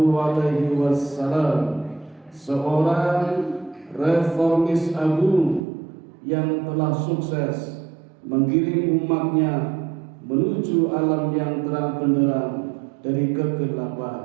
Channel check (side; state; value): left; drops out; at 5.7 s